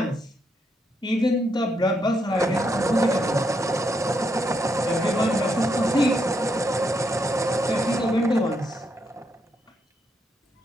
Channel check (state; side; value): normal; both; correlation 0.78